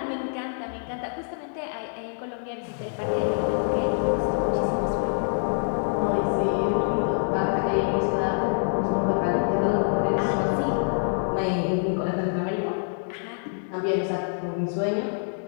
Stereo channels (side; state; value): right; silent; digital silence